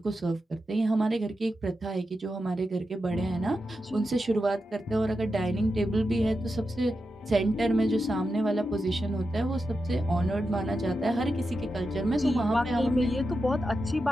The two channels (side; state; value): both; normal; correlation 0.89